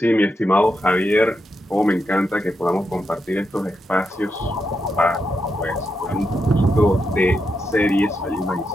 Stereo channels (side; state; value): both; normal; correlation 0.84